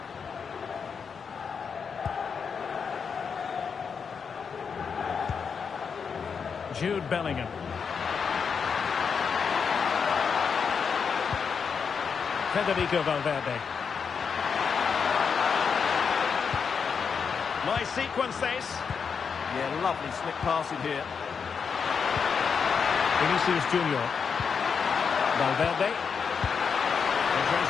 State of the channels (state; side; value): quieter; right; 6.2 dB